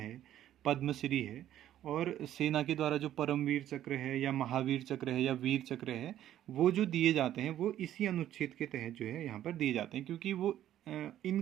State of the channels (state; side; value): quieter; left; 12.0 dB